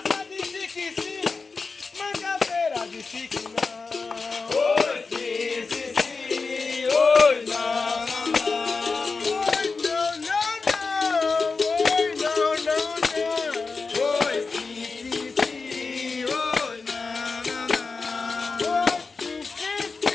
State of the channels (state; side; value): quieter; right; 4.4 dB